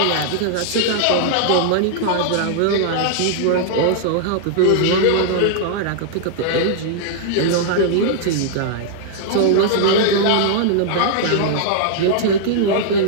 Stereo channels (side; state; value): both; different; correlation -0.01